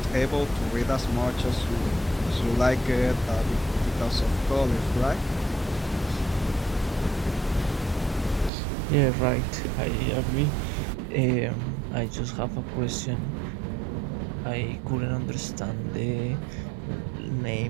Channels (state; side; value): drops out; left; at 8.5 s